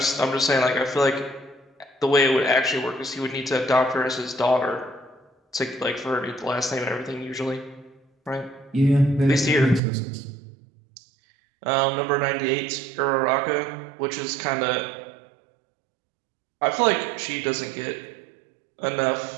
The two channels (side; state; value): left; drops out; at 9.8 s